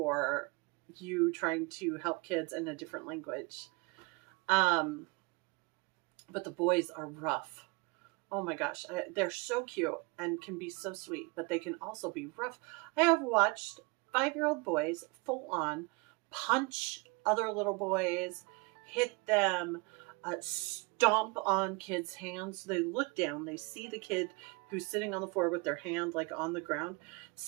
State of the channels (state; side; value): quieter; left; 28.4 dB